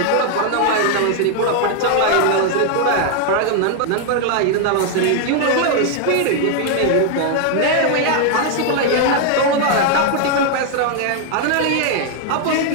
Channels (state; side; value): different; both; correlation 0.00